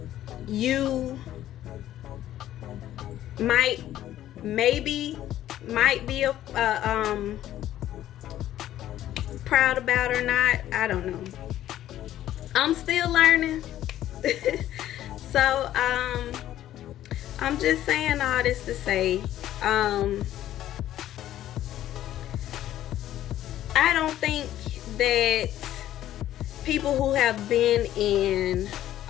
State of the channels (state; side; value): quieter; right; 12.7 dB